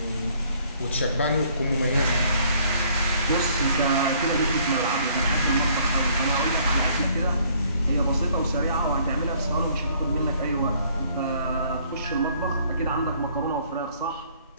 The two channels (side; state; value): both; inverted; correlation -0.61